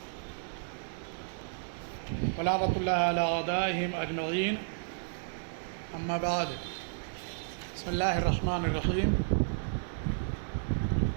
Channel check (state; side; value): silent; left; digital silence